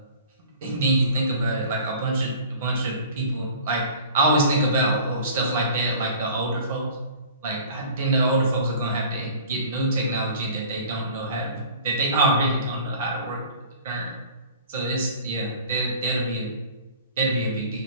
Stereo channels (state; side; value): inverted; both; correlation -0.45